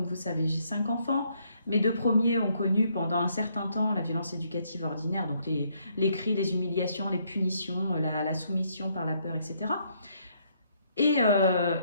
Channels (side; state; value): both; inverted; correlation -0.71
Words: vous savez, j'ai 5 enfants. Mes 2 premiers ont connu pendant un certain temps la violence éducative ordinaire, donc les cris, les humiliations, les punitions, la soumission par la peur, etc. Et